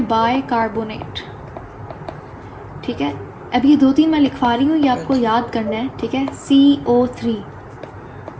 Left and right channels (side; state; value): both; identical; correlation 1.00